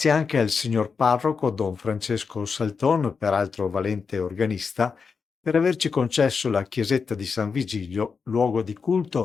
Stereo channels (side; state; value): right; quieter; 5.4 dB